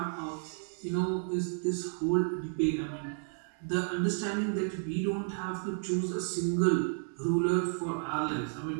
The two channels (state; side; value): silent; left; 56 dB below the other